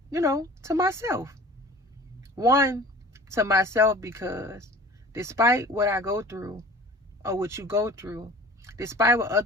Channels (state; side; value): normal; both; correlation 0.44